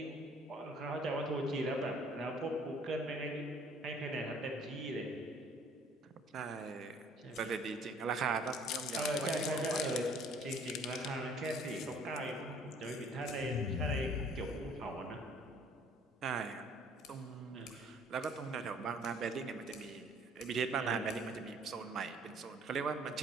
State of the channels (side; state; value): both; normal; correlation 0.57